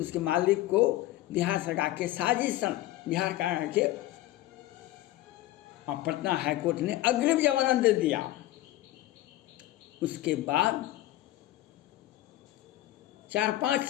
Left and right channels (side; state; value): right; quieter; 15.5 dB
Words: मालिक को बिहार सरकार के साजिशन बिहार सरकार के और पटना हाई कोर्ट ने अग्रिम जमानत दे दिया। उसके बाद